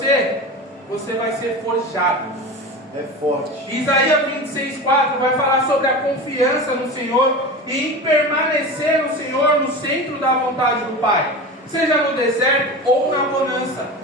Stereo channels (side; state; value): both; normal; correlation 0.29